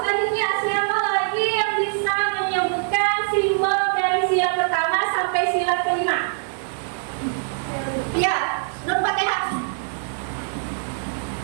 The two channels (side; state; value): left; silent; digital silence